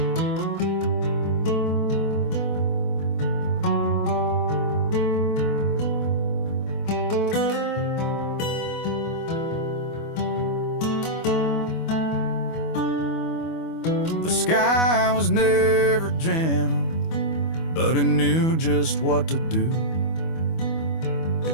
The sky was never gentle, but it knew just what to do.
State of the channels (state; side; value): late; right; 25 ms